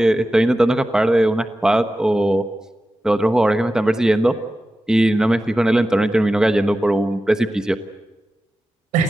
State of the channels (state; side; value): normal; both; correlation 0.93